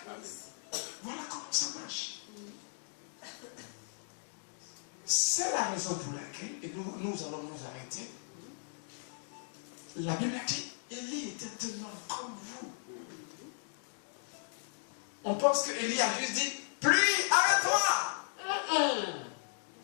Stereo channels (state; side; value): silent; right; digital silence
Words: Voilà comment ça marche. C'est la raison pour laquelle, et nous allons nous arrêter. La Bible a dit, Élie était tellement comme vous. On pense que Élie a juste dit, pluie, arrête-toi.